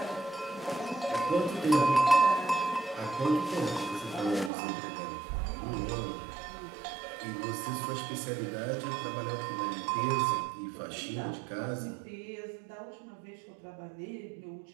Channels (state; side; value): drops out; left; at 4.5 s